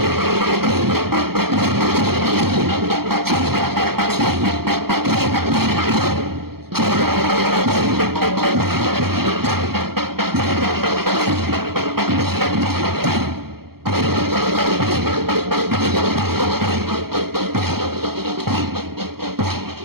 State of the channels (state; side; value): late; left; 0.94 ms